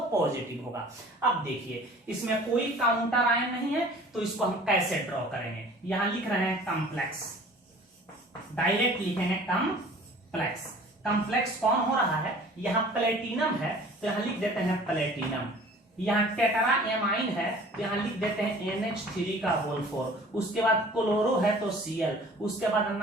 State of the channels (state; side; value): normal; both; correlation 0.48